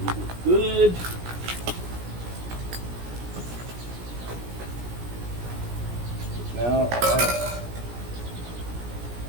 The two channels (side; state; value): left; late; 17 ms